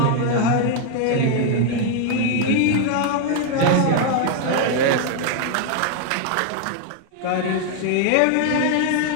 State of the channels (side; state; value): both; different; correlation 0.00